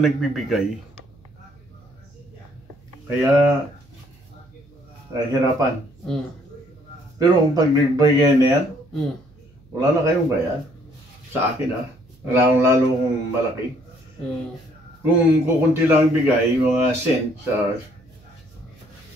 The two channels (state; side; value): noise; right; hum, 28 dB below the sound